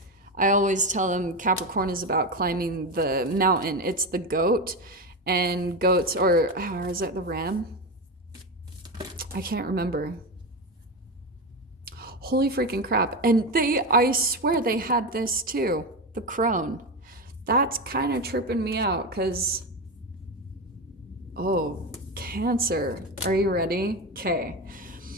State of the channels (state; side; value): normal; both; correlation 0.17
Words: I always tell them Capricorn is about climbing the mountain. It's the goat, and goats, or is it the ram? I can't remember. Holy freaking crap. And I swear they had this too, the crone. That's kind of tripping me out because, Cancer. Are you ready? Okay.